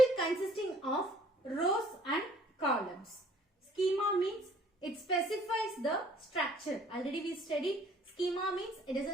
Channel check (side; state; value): both; normal; correlation 0.58